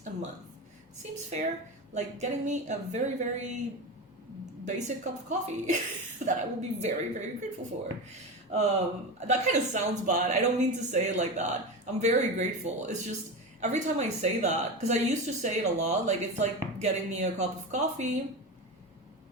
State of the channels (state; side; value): normal; both; correlation 0.22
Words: a month. Seems fair, like getting me a very, very basic cup of coffee that I will be very, very grateful for. That kind of sounds bad. I don't mean to say it like that. I'm very grateful. It's just every time I say that, because I used to say it a lot, like it's like getting me a cup of coffee.